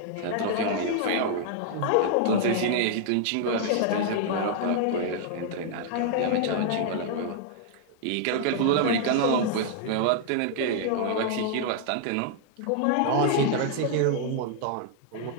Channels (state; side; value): different; both; correlation -0.01